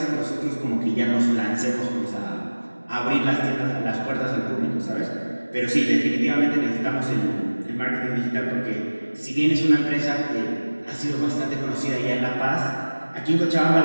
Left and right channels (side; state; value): both; inverted; correlation -1.00